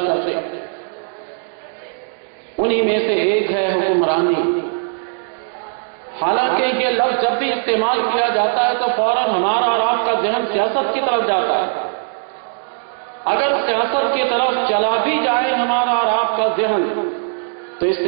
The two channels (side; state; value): left; silent; 67 dB below the other